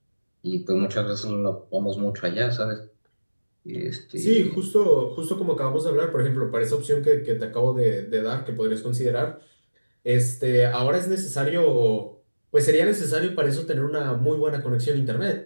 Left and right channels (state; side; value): inverted; both; correlation -1.00